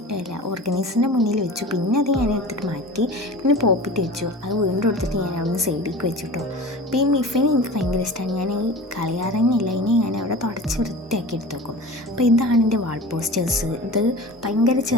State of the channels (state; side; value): normal; both; correlation 0.36